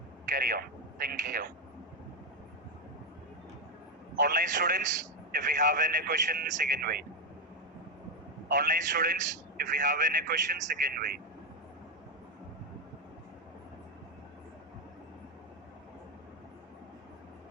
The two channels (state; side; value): normal; both; correlation 0.08